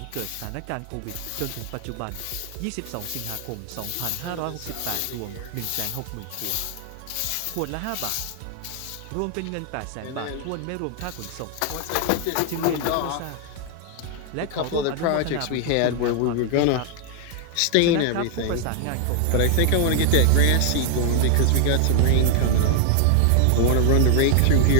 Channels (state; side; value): different; both; correlation 0.00